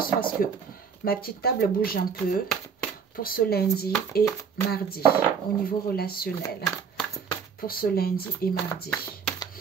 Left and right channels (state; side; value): quieter; left; 6.4 dB